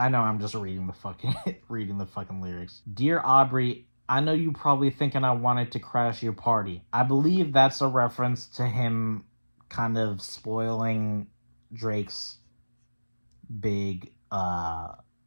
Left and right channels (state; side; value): inverted; both; correlation -1.00